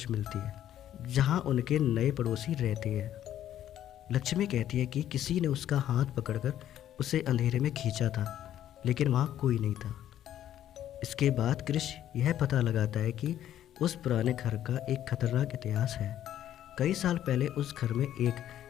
मिलती है जहां उनके नए पड़ोसी रहते हैं। लक्ष्मी कहती है कि किसी ने उसका हाथ पकड़कर उसे अंधेरे में खींचा था, लेकिन वहाँ कोई नहीं था। इसके बाद क्रिश यह पता लगाता है कि उस पुराने घर का एक खतरनाक इतिहास है। कई साल पहले उस घर में एक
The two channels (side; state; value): right; quieter; 11.5 dB